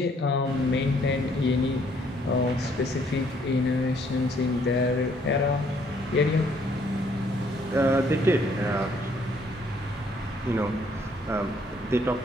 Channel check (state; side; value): normal; both; correlation 0.65